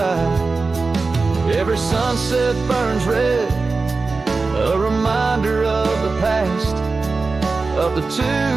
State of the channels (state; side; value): quieter; left; 4.0 dB